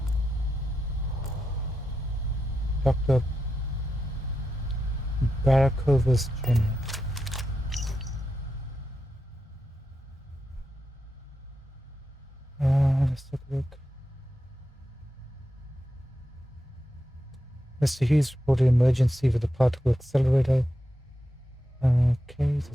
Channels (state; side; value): normal; both; correlation 0.87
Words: Dr. Barakovas Jr. Let's take a look. Mr. Hughes reported emergency with the particle accelerator. Okay,